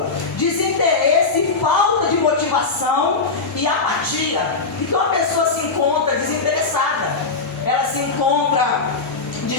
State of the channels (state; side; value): quieter; right; 4.1 dB